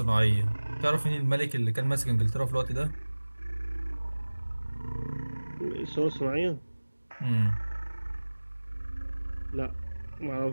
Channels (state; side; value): inverted; both; correlation -1.00